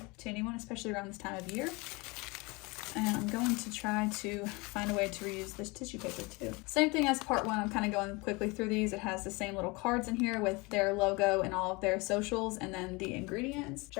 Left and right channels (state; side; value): quieter; right; 26.1 dB